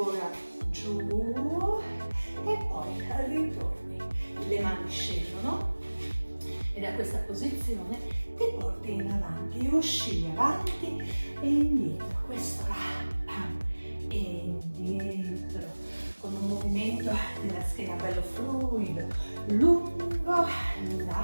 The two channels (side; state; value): both; inverted; correlation -1.00